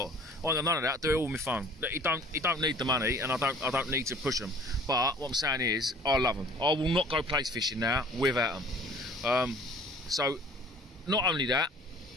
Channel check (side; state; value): both; normal; correlation 0.50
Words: I ain't got none of that. I do it all with my phone. He don't need the money, and I don't need to push him. But what I'm saying is, I love them. I will not go plaice fishing now without them. So, not only that,